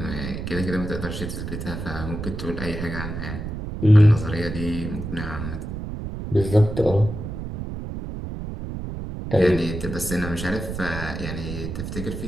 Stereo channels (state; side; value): noise; right; rumble, 6 dB below the sound